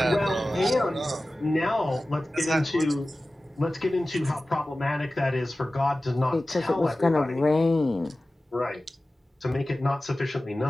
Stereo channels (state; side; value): normal; both; correlation 0.96